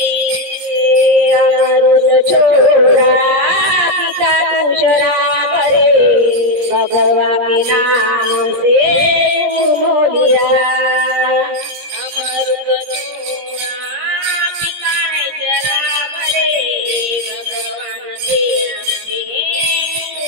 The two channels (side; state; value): left; late; 17 ms